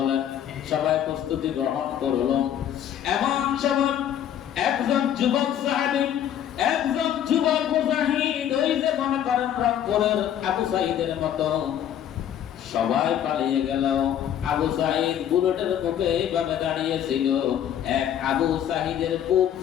সবাই প্রস্তুতি গ্রহণ করল। এমন সময় একজন যুবক সাহাবী, একজন যুবক মুজাহিদ, ওই যে মনে করেন রংপুরের আবু সাঈদের মতো, সবাই পালিয়ে গেল। আবু সাঈদ বুলেটের মুখে এইভাবে দাঁড়িয়েছিল। এক আবু সাঈদের বুক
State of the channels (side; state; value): right; quieter; 10.1 dB